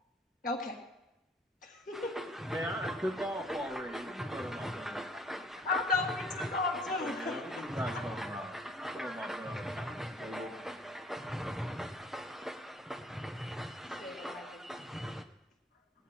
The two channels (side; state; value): both; normal; correlation 0.57